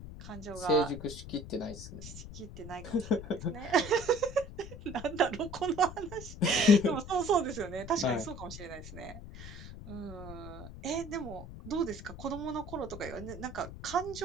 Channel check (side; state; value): left; noise; rumble, 12 dB below the sound